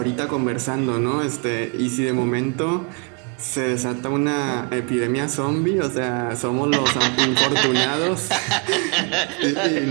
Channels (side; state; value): left; quieter; 34.6 dB